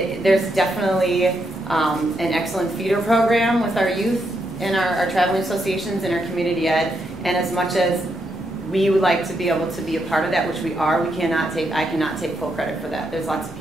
definitely an excellent feeder program with our youth and our traveling associations and our community ed. And as much as we would like to be able to be a part of that, which we are, I cannot take full credit for that. There's lots of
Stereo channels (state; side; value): normal; both; correlation 0.80